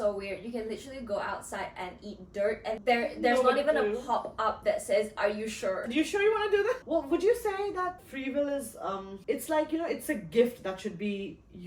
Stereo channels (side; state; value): both; identical; correlation 1.00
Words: weird. You can literally go outside and eat dirt and there's No not even a clue. pop-up that says, "Are you sure?" You sure you want to do that? Well, would you say that free will is, it's like, you know, it's a gift that should be